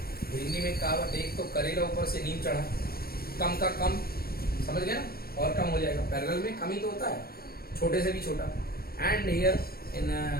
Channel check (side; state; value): right; late; 0.44 ms